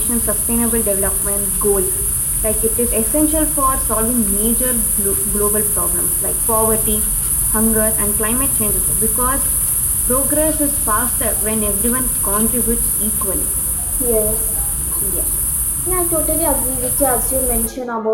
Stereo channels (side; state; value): both; identical; correlation 1.00